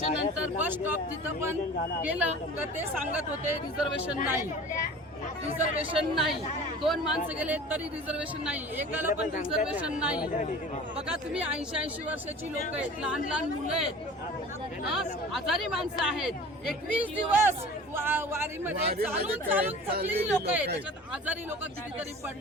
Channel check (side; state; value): both; normal; correlation 0.41